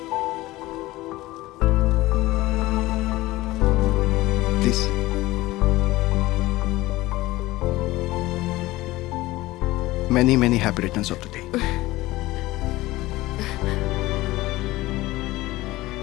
Please. Many, many happy returns of the day.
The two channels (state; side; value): quieter; right; 18.4 dB